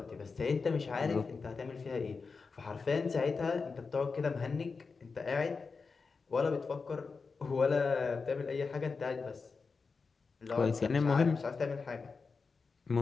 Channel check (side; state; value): right; quieter; 4.7 dB